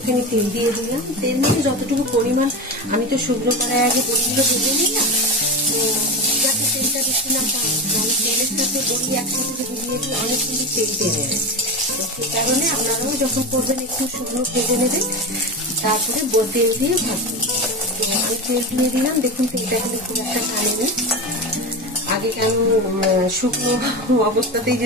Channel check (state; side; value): normal; both; correlation 0.22